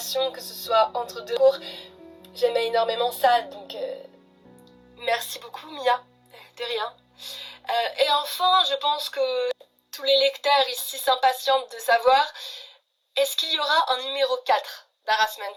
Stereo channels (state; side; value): identical; both; correlation 1.00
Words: que ce soit entre deux cours. J'aimais énormément ça, donc merci beaucoup Mia, de rien. Et enfin, je pense que tous les lecteurs ici s'impatientent de savoir, est-ce qu'il y aura un numéro 4